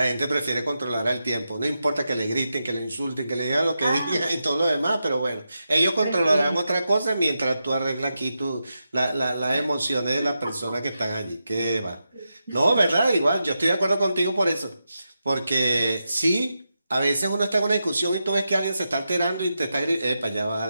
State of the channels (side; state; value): both; inverted; correlation -0.88